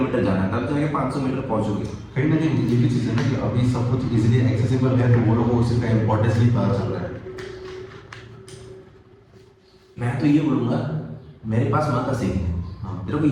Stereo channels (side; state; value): both; identical; correlation 1.00